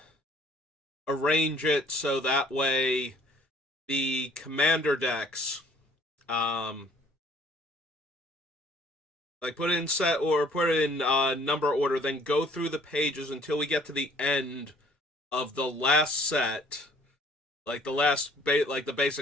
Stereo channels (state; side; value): normal; both; correlation 0.57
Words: arrange it so that way the Commander decks um, like put it in set or put it in number order, then go through the pages until we get to the end of the last set, like like the